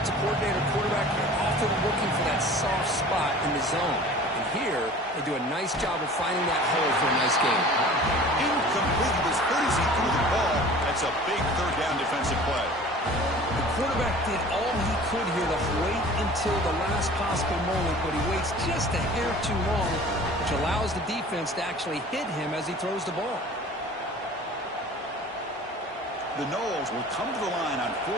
coordinator, quarterback, you're often looking for that soft spot in the zone. And here, they do a nice job of finding that hole for a nice gain. Incomplete. It was good as he threw the ball. That's a big third down defensive play. The quarterback did all he could here to wait until the last possible moment, but he waits just a hair too long, which allows the defense to actually hit him as he throws the ball. The Noles will come to the line on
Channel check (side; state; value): both; normal; correlation 0.44